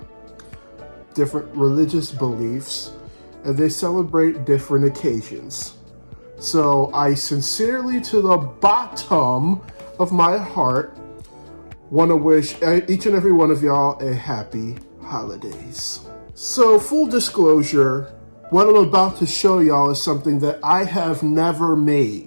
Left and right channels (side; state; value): both; inverted; correlation -1.00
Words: different religious beliefs, and they celebrate different occasions. So I sincerely, to the bottom of my heart, want to wish each and every one of y'all a happy holidays. So full disclosure, what I'm about to show y'all is something that I have never